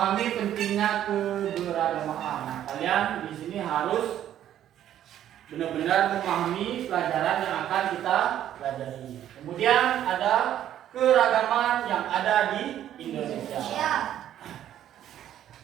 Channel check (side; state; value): left; quieter; 11.3 dB